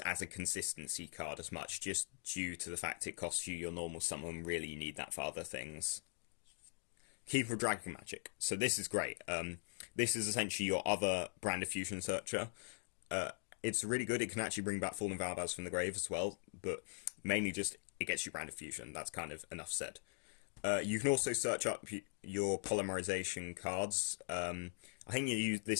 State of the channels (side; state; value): right; silent; digital silence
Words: as a consistency card as much, just due to the fact it costs you your normal summon. Really, you need that for other things. Keeper of Dragon Magic. So this is great. This is essentially your other brand of fusion searcher. It's really good. It can actually bring back Fallen Albaz from the grave as well, but mainly just it gets you brand of fusion. That's kind of enough said. You can also search up your polymerization cards. I think